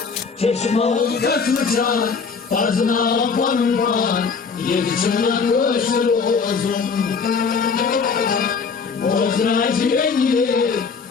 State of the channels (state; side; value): quieter; right; 5.4 dB